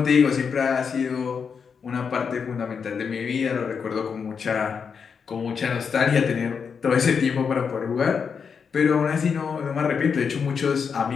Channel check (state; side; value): quieter; right; 6.2 dB